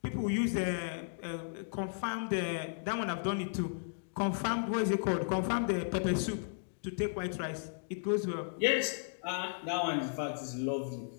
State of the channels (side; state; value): right; silent; digital silence